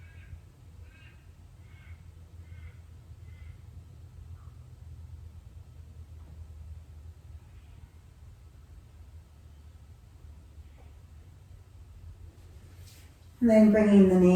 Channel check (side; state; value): both; identical; correlation 1.00